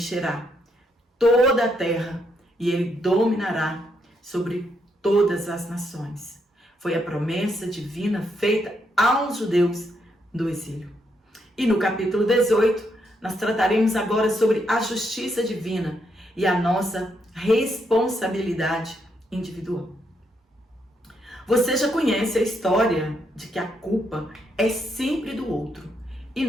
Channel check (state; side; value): normal; both; correlation 0.77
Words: toda a terra e ele dominará sobre todas as nações. Foi a promessa divina feita aos judeus do exílio. E no capítulo 18, nós trataremos agora sobre a justiça divina e a nossa responsabilidade individual. Você já conhece a história de que a culpa é sempre do outro e